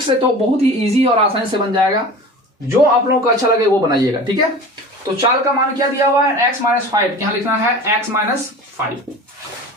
से तो बहुत ही इजी और आसानी से बन जाएगा। जो आप लोगों को अच्छा लगे वो बनाइएगा। ठीक है, तो चाल का मान क्या दिया हुआ है, x - 5, यहां लिखना है x - 5।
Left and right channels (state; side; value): normal; both; correlation 0.37